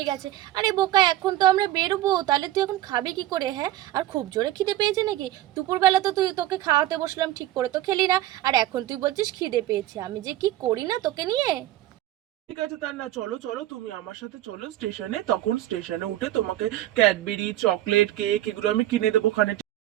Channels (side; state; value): left; quieter; 14.3 dB